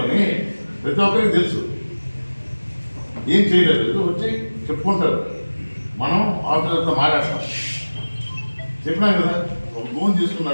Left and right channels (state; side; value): inverted; both; correlation -1.00